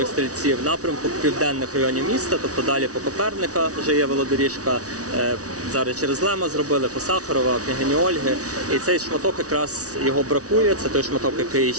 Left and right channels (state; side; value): late; left; 0.67 ms